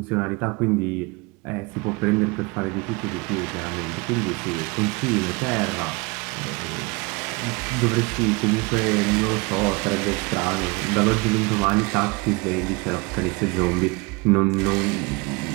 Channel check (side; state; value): left; quieter; 26.8 dB